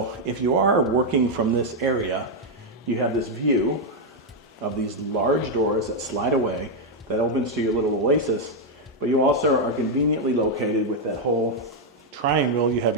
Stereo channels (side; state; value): both; normal; correlation 0.01